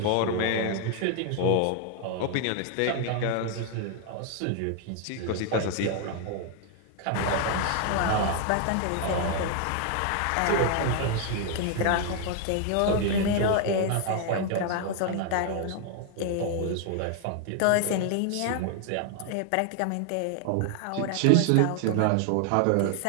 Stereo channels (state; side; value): different; both; correlation 0.00